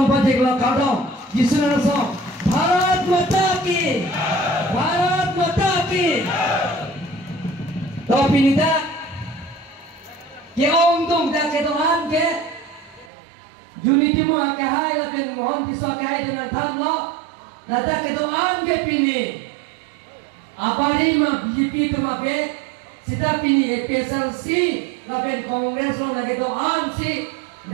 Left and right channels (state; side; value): drops out; left; at 13.1 s